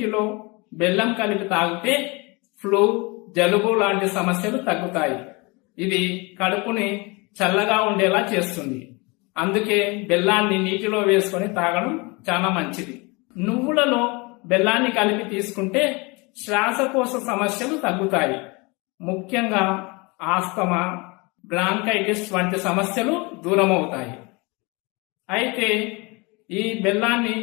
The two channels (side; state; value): right; quieter; 27.3 dB